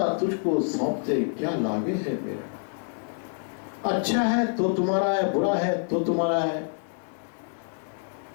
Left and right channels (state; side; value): silent; right; digital silence